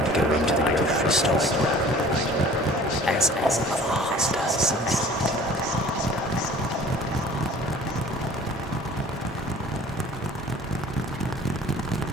going to the grocery store, as all of ours does.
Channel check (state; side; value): normal; both; correlation 0.47